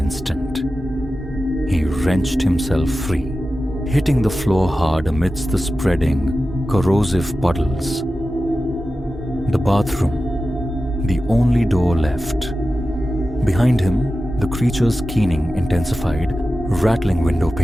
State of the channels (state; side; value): normal; both; correlation 0.93